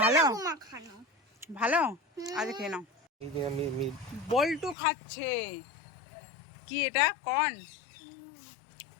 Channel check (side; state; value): right; drops out; at 4.8 s